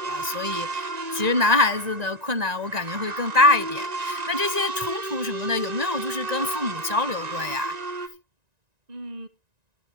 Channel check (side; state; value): left; late; 1.9 ms